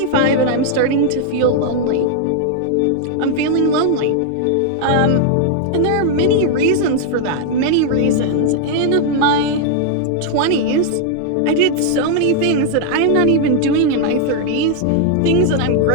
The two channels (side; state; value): both; different; correlation 0.00